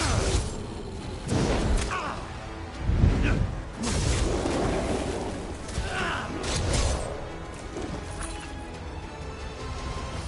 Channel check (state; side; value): identical; both; correlation 1.00